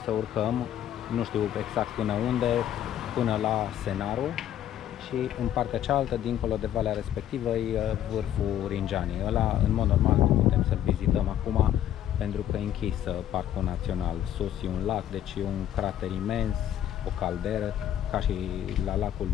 să urcăm, nu știu exact până unde, până la Scenarul, și în partea cealaltă, dincolo de valea respectivă, e vârful Ringianii. Ăla, în mod normal, nu putem să-l vizităm acum, pentru că e închis Parcul Național. Sus e un lac, deci e un crater imens, o calderă, ca și la lacul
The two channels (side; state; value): right; quieter; 11.1 dB